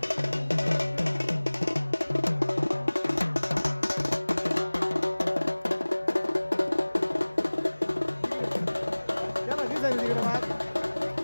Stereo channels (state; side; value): inverted; both; correlation -1.00